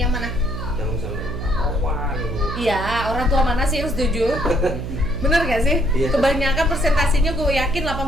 mana? Yang misalnya kawan lu. Iya, orang tua mana sih yang setuju? Bener gak sih? Iya. Kebanyakan persentasinya gue yakin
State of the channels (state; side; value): noise; right; hum, 6 dB below the sound